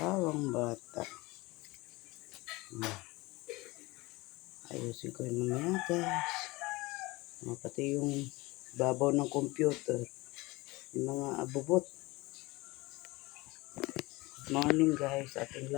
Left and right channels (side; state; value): right; quieter; 22.3 dB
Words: bata. Ayusin ko yung mga guys. Pati yung babaw ng computer. Yung mga abubot. Morning guys, ating